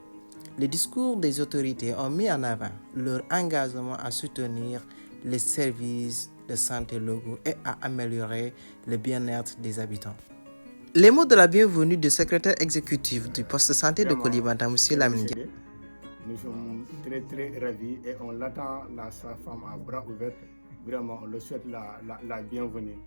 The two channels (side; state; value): both; inverted; correlation -1.00